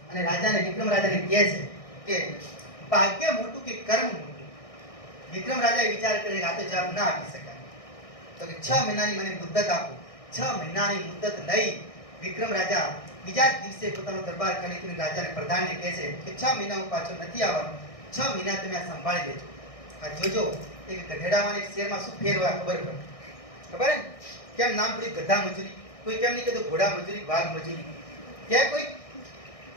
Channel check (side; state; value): right; late; 1.6 ms